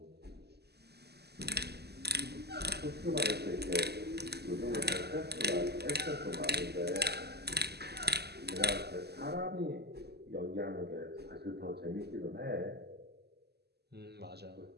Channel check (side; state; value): left; late; 0.47 ms